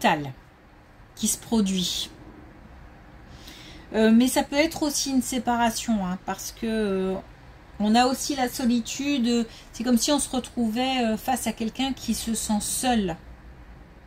qui se produit. Mais ça peut être aussi une séparation, hein, parce que on a aussi la solitude. C'est comme si on se retrouvait face à quelqu'un qui se sent seul.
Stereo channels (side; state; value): both; identical; correlation 1.00